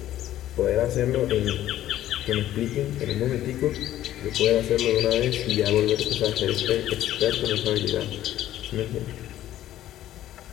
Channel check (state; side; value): quieter; right; 13.1 dB